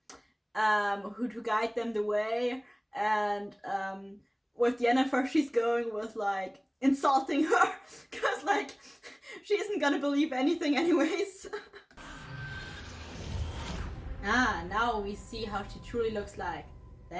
who to guide them the way, and with Yennefer she's going with like insulting her, cause like she isn't gonna believe anything anyways. Ah, now we see how she truly looks like.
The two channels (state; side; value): identical; both; correlation 1.00